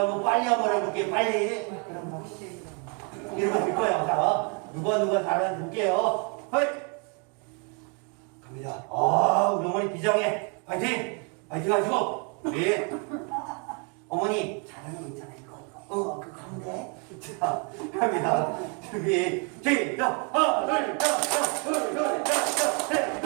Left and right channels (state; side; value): quieter; left; 36.6 dB